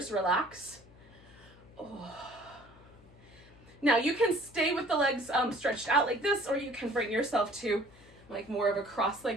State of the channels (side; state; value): left; noise; hum, 24 dB below the sound